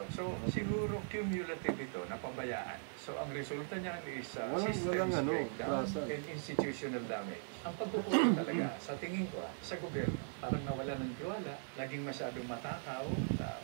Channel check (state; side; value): silent; left; digital silence